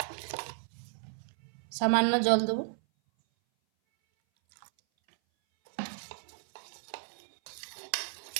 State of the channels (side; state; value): left; silent; 56 dB below the other